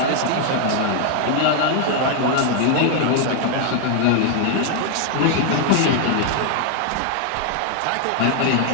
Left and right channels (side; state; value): both; different; correlation 0.00